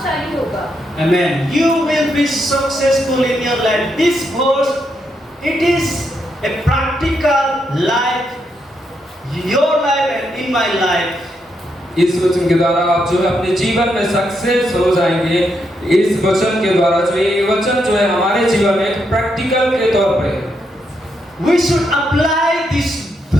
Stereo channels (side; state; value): both; normal; correlation 0.80